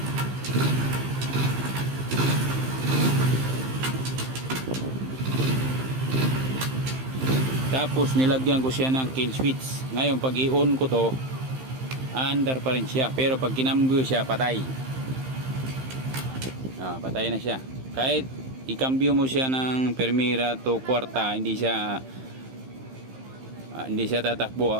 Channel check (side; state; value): left; late; 15 ms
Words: 4, tapos nilagyan ko siya ng kill switch. Ngayon pag i-on ko to, under pa rin siya, pero pag kinambyo siya, patay. Patay na siya. Kahit i-cambio mo siya ng Primera to kwarta, hindi siya tatakbo,